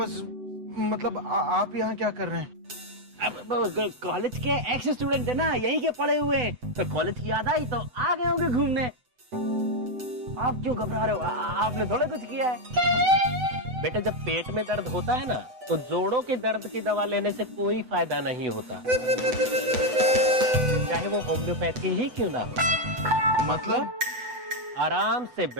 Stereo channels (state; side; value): late; left; 8.0 ms